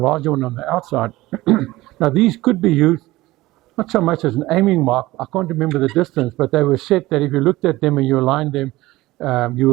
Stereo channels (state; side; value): quieter; left; 18.4 dB